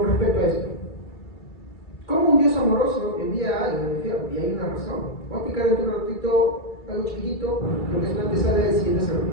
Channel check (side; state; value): right; late; 2.3 ms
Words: respecto a esto. ¿Cómo un Dios amoroso envía algo al infierno? Y hay una razón. Voy a explicar en un ratito algo chiquitito, lo que es una antesala del siguiente